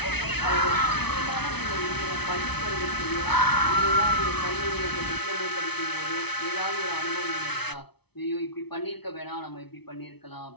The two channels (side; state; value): right; late; 0.99 ms